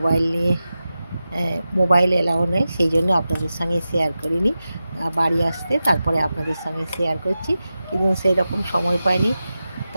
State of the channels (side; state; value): both; inverted; correlation -0.93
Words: মোবাইল এলাও নেই, সেই জন্য আপনাদের সঙ্গে শেয়ার করিনি। বাড়ি আসতে তারপরে আপনাদের সঙ্গে শেয়ার করছি, কিন্তু সেই রকম সময় পাইনি,